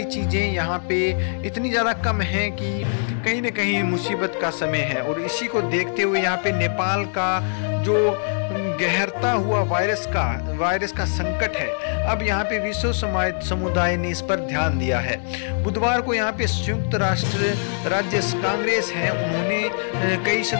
चीज़ें यहाँ पे इतनी ज़्यादा कम हैं कि कहीं ना कहीं मुसीबत का समय है। और इसी को देखते हुए यहाँ पे नेपाल का जो गहरता हुआ वायरस का संकट है, अब यहाँ पे विश्व समुदाय ने इस पर ध्यान दिया है। बुधवार को यहाँ पे संयुक्त राष्ट्र राज्य कांग्रेस है, उन्होंने कई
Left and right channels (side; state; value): right; silent; digital silence